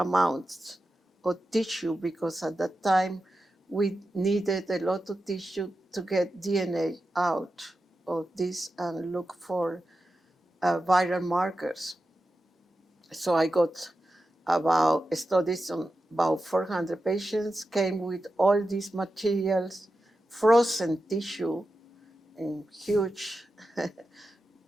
of tissue because at that time we needed a lot of tissue to get DNA out of this and look for viral markers. So I got about studies on about 400 patients, came with all these materials, frozen tissue in huge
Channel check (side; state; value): both; normal; correlation 0.91